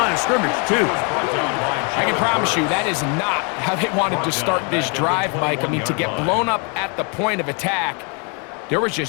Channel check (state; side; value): quieter; right; 35.5 dB